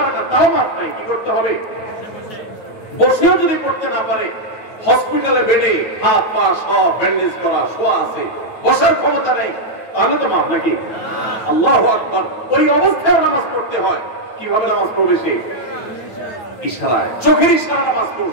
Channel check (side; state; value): right; late; 9.1 ms